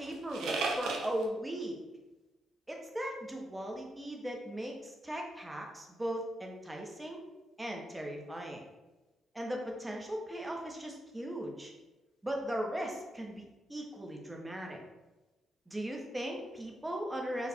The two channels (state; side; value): normal; both; correlation 0.84